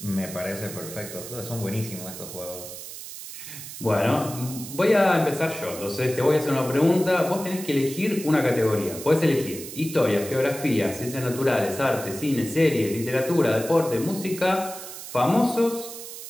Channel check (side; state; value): right; noise; hiss, 11 dB below the sound